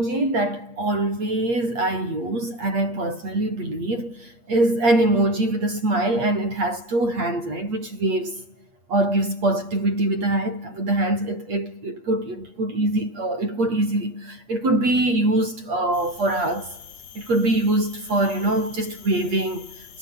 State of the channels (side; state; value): left; late; 8.5 ms